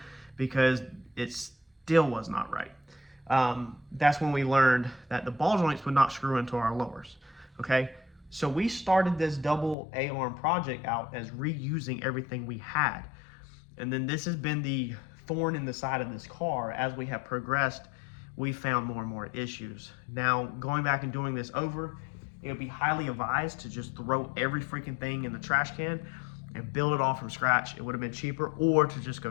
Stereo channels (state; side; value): drops out; right; at 9.8 s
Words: because it still was not right. That's when we learned that the ball joints would not screw into our lowers, okay? So we started this double A-arm project out as reusing everything we had. And then this has been the thorn in the side of this car. As we have progressed, we found more and more issues. Now, going back and doing this over, it would be highly advised to just throw every freaking thing in the trash can and build it all from scratch. It would have been cheaper, or to just